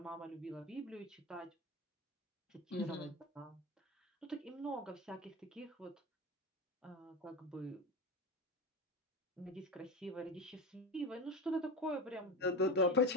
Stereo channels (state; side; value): normal; both; correlation 0.23